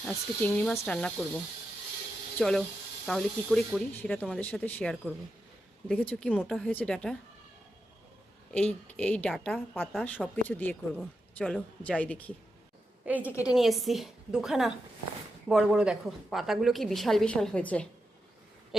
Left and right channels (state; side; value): normal; both; correlation 0.87